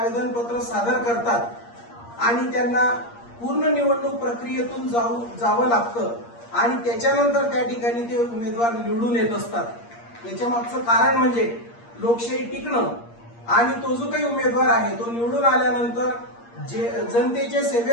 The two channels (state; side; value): late; right; 8.6 ms